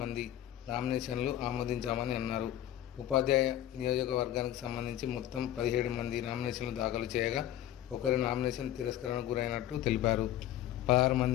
నామినేషన్లు ఆమోదించామని అన్నారు. ఉపాధ్యాయ నియోజకవర్గానికి సంబంధించి మొత్తం 17 మంది నామినేషన్లు దాఖలు చేయగా ఒకరి నామినేషన్ తిరస్కరణకు గురైనట్టు తెలిపారు. 16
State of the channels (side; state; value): right; quieter; 12.4 dB